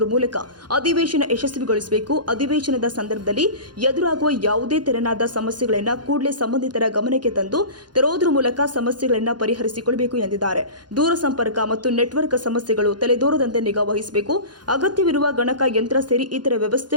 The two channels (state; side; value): late; left; 0.70 ms